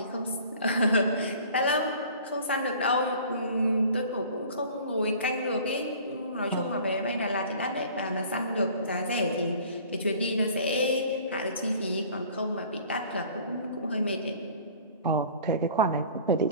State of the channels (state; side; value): inverted; both; correlation -0.47